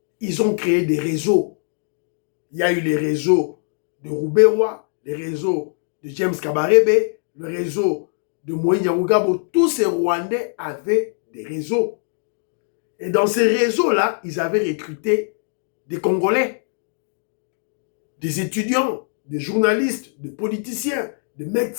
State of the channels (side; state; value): right; silent; 64 dB below the other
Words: ils ont créé des réseaux. Il y a eu les réseaux de Rouberois, les réseaux de James Kabarebe, le réseau de Moïse Nyarugabo. Tous ces Rwandais avaient des réseaux. Et dans ces réseaux-là, ils avaient recruté des Congolais des étudiants, des journalistes, des politiciens, des